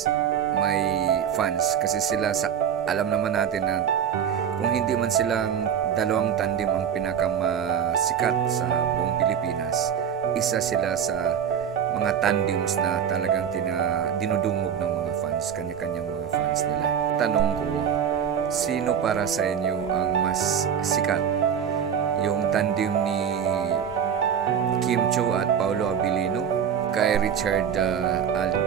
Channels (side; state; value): left; quieter; 8.3 dB